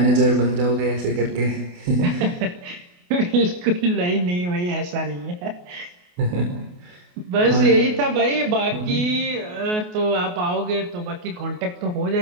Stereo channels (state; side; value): late; left; 28 ms